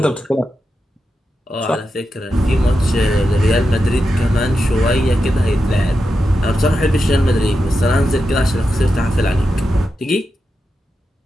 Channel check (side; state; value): both; normal; correlation 0.88